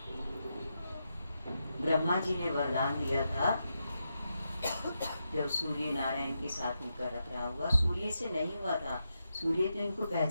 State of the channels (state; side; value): inverted; both; correlation -0.86